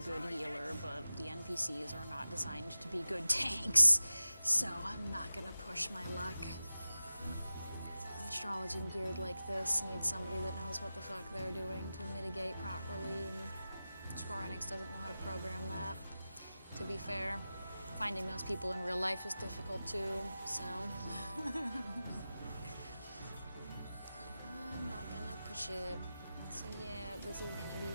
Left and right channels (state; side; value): inverted; both; correlation -0.95